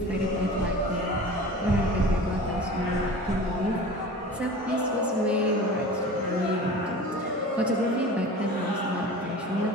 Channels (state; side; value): normal; both; correlation 0.37